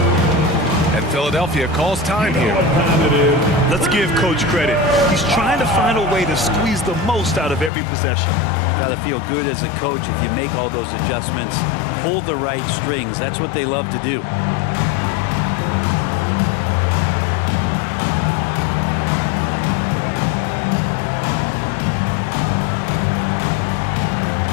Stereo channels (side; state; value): right; drops out; at 7.7 s